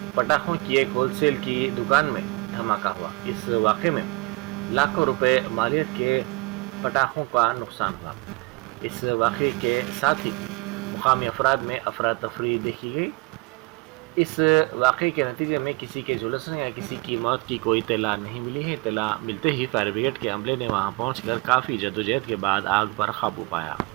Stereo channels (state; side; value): quieter; left; 27.2 dB